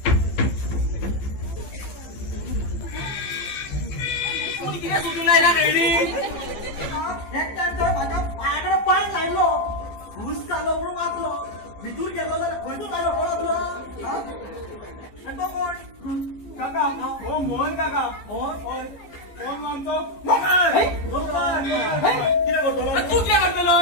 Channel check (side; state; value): right; late; 15 ms